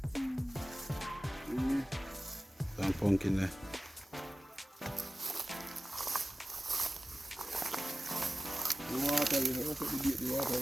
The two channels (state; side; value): normal; both; correlation 0.96